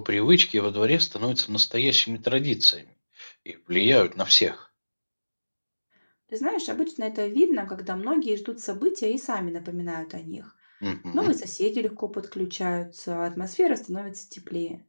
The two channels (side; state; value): both; inverted; correlation -1.00